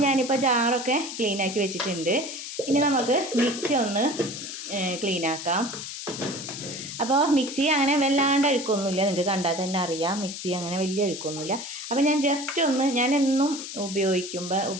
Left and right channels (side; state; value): left; noise; hiss, 8 dB below the sound